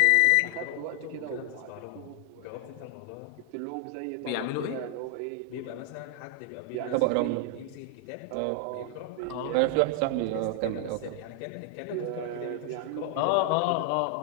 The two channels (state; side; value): different; both; correlation 0.00